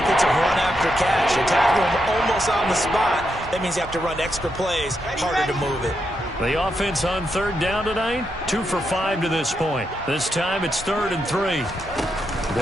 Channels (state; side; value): normal; both; correlation 0.83